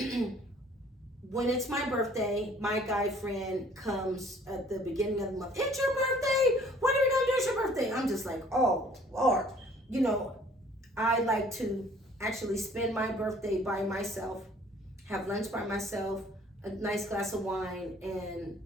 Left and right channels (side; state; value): both; normal; correlation 0.55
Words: it's my birthday, my guy friend comes at the beginning of the month. It's your birthday. What are we going to do? It's your birthday. I'm just like, oh, Lord. I like to actually spend my birthday by myself, have lunch by myself, a nice glass of wine, and